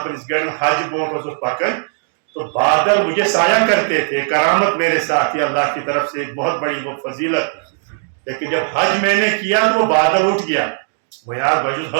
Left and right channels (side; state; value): left; silent; digital silence